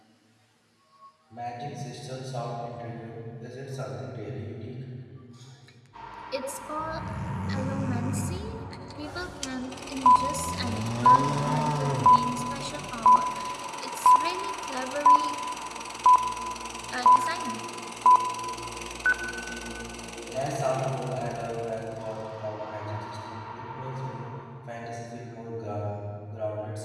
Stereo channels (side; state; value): both; identical; correlation 1.00